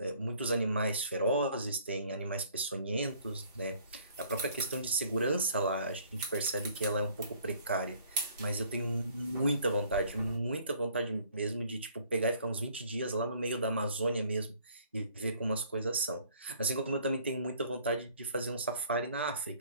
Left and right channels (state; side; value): inverted; both; correlation -0.58